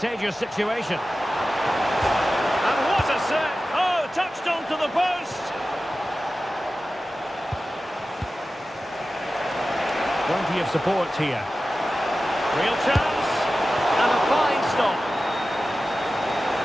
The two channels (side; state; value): both; normal; correlation 0.95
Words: situation? And what a set! Oh, touched onto the post! Plenty of support here. Real chance! And a fine stop.